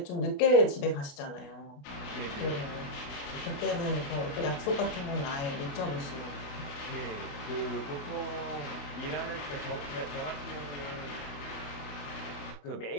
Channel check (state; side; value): late; right; 28 ms